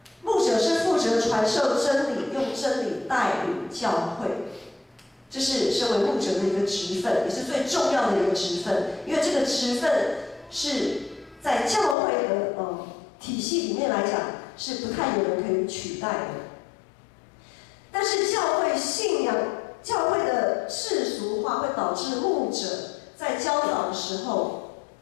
牧者是负责传授真理，用真理带领教会，这是身为牧者的一个职分，也是最重要的一个职分。因为这个职分是在教会的体系里面来讲，是不太有人可以取代的。但是教会信仰、教会的世俗化会导致牧者在教导的时候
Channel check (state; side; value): drops out; right; at 12.0 s